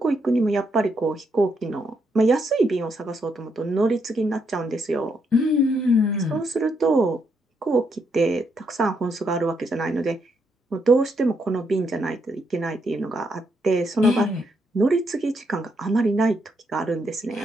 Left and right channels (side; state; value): both; normal; correlation 0.77